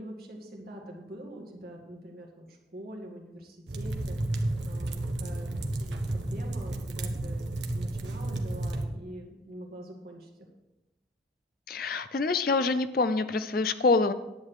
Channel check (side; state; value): both; normal; correlation 0.47